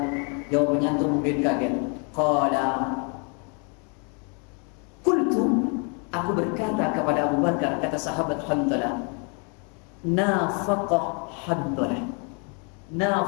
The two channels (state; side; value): quieter; right; 36.8 dB